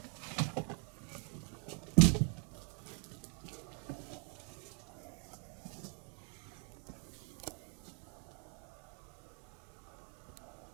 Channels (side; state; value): left; quieter; 37.8 dB